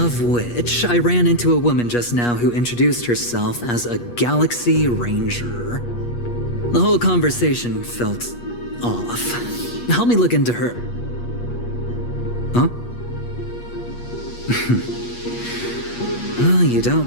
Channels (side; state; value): right; late; 8.4 ms